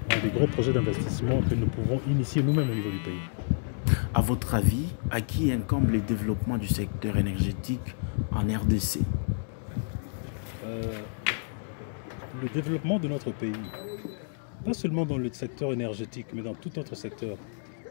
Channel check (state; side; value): silent; right; digital silence